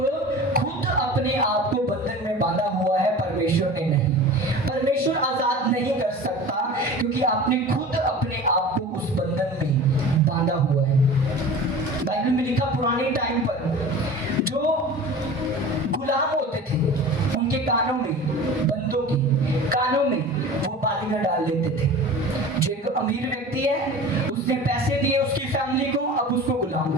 खुद अपने आप को बंधन में बांधा हुआ है, परमेश्वर ने नहीं। परमेश्वर आजाद नहीं कर सकता क्योंकि आपने खुद अपने आप को उस बंधन में बांधा हुआ है। बाइबल में लिखा पुराने टाइम पर जो गुलाम होते थे उनके कानों में, बंदों के कानों में वो बालियां डाल लेते थे। जो एक अमीर व्यक्ति है उसने पैसे दिए उसकी फैमिली को, अब उसको गुलाम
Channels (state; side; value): normal; both; correlation 0.37